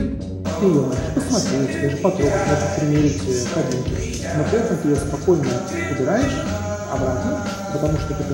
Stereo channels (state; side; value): identical; both; correlation 1.00